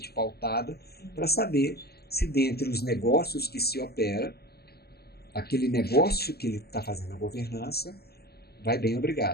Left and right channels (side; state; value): right; late; 0.46 ms